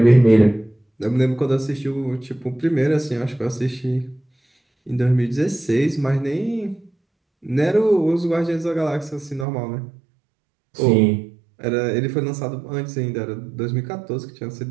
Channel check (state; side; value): drops out; left; at 9.5 s